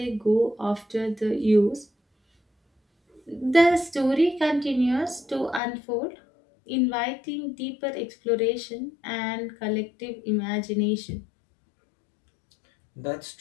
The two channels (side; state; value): right; drops out; at 5.6 s